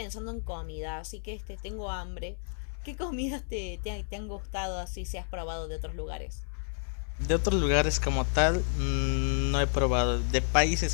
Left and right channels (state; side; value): silent; right; digital silence